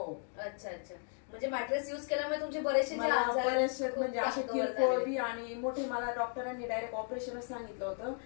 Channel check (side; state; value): right; silent; 54 dB below the other